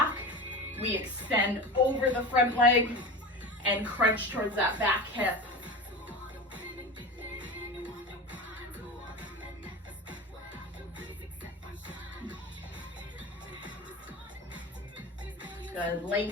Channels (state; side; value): normal; both; correlation 0.29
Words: We extend over the front leg and crunch towards that back hip. Good,